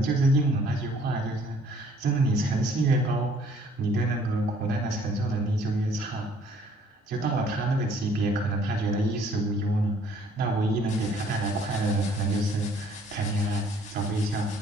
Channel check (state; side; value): normal; both; correlation 0.59